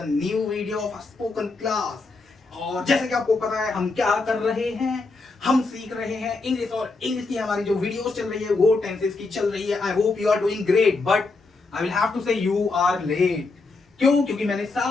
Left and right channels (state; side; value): quieter; right; 3.7 dB